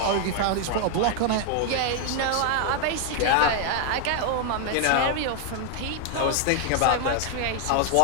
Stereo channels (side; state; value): both; different; correlation 0.00